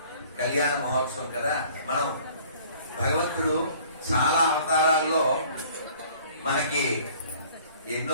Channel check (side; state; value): both; inverted; correlation -0.53